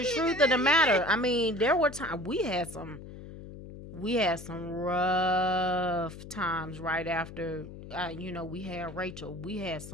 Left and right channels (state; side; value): noise; left; hum, 13 dB below the sound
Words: truth of the matter. I mean, there were times we had some we had some rough times right after, we had Rachel. We had